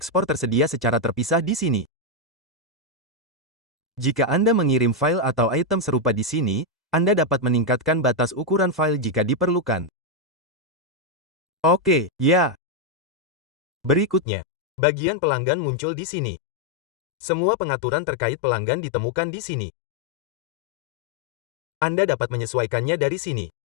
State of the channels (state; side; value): drops out; right; at 14.2 s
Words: tersedia secara terpisah di sini. Jika Anda mengirim file atau item serupa di sini, Anda dapat meningkatkan batas ukuran file jika diperlukan. Oke, ya. Berikutnya, bagian pelanggan muncul di sini. Semua pengaturan terkait pelanggan ditemukan di sini. Anda dapat menyesuaikannya dari sini.